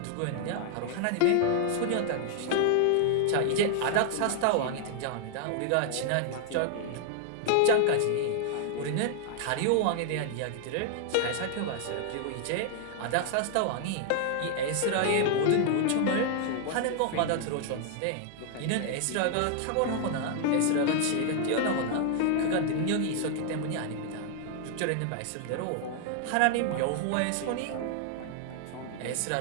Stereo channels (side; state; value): both; different; correlation 0.00